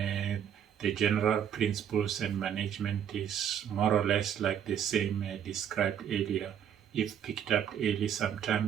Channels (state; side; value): quieter; left; 9.0 dB